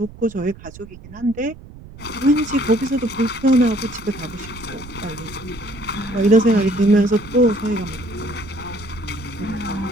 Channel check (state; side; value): noise; right; rumble, 17 dB below the sound